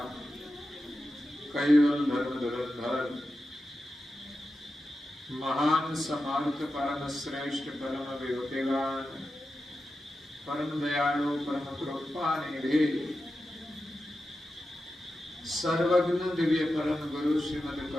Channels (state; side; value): normal; both; correlation 0.91